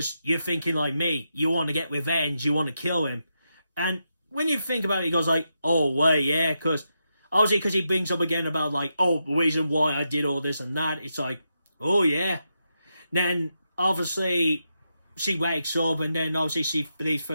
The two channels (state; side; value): inverted; both; correlation -0.85